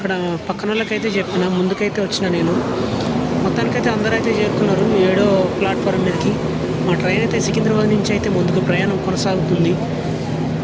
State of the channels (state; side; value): identical; both; correlation 1.00